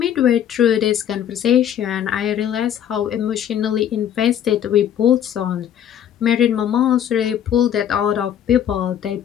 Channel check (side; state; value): right; quieter; 9.8 dB